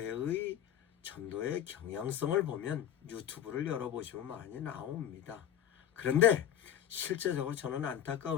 전도의 경향성을 보면 유튜브를 열어보시면 많이 나옵니다. 그런데 실제적으로 저는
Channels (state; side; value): quieter; right; 10.3 dB